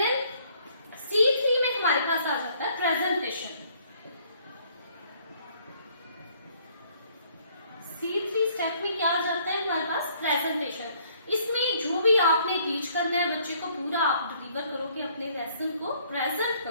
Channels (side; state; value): both; inverted; correlation -0.63